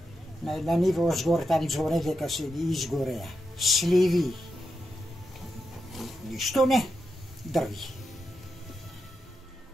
На ниво озгоре там зоре дека се изгореа. Сливи. Ништо не, дрви.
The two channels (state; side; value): normal; both; correlation 0.87